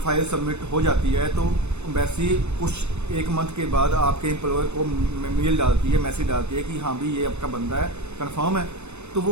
सबमिट हो जाती है तो एम्बेसी कुछ 1 मंथ के बाद आपके एम्प्लॉयर को मेल डालती है, मैसेज डालती है कि हाँ भी ये आपका बंदा है, कंफर्म है। तो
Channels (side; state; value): left; late; 0.81 ms